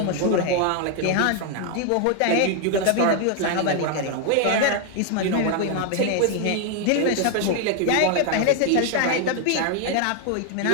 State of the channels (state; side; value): different; both; correlation 0.00